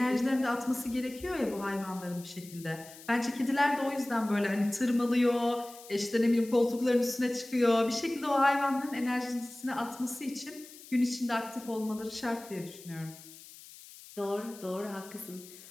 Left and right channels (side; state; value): left; noise; hiss, 18 dB below the sound